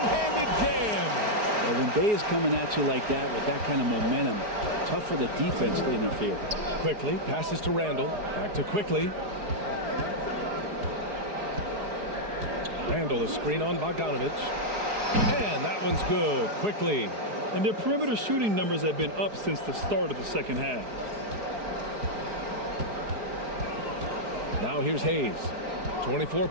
jam. Well, when Bay is coming at you like that with that kind of momentum, tough for the defense to interfere. Quickly passes to Randall. Back to Quickly. Randall, a screen on Bogdanovich. And that one's good. Quickly And their perimeter shooting numbers have been up since the start of the second half. Now here's Hayes. 24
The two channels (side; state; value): left; late; 5.0 ms